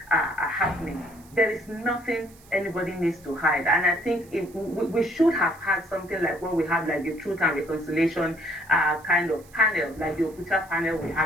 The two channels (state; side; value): noise; right; hiss, 26 dB below the sound